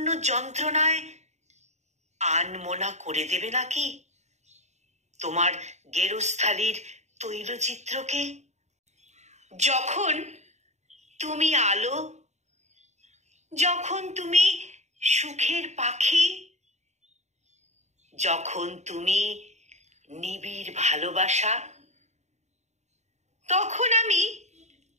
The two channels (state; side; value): late; left; 0.33 ms